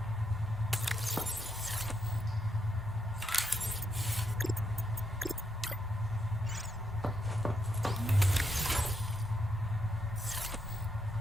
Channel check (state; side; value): normal; both; correlation 0.79